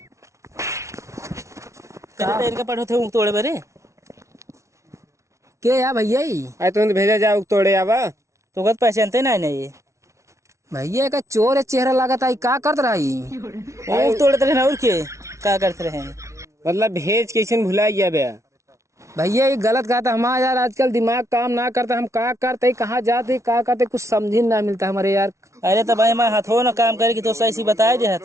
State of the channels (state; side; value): late; left; 0.14 ms